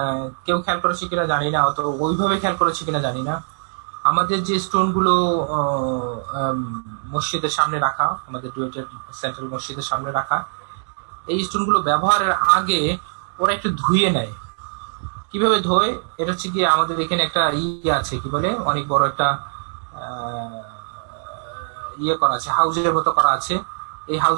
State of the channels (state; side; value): silent; left; digital silence